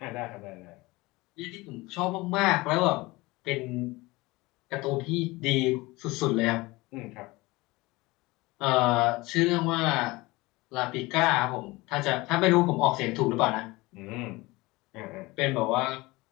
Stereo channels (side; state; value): right; quieter; 21.8 dB